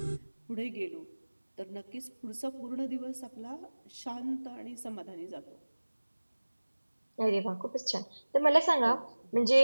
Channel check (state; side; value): inverted; both; correlation -1.00